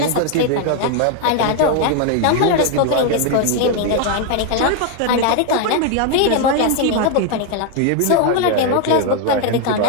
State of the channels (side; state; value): both; different; correlation 0.00